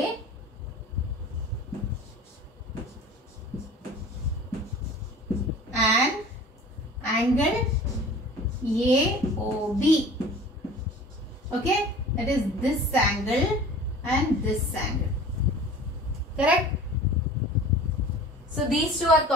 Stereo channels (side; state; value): both; normal; correlation 0.42